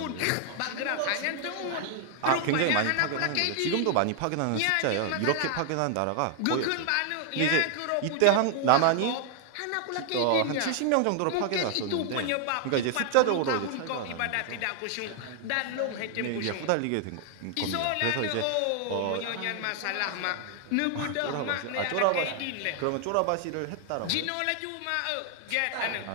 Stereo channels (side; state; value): both; different; correlation 0.00